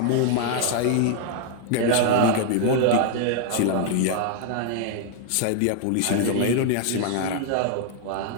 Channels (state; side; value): different; both; correlation 0.00